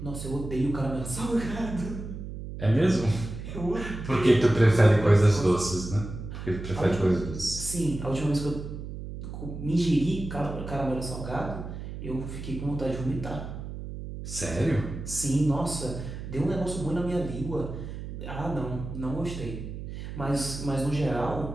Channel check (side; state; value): right; noise; hum, 8 dB below the sound